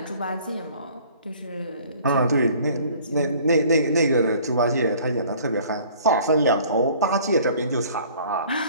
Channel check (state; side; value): inverted; both; correlation -0.53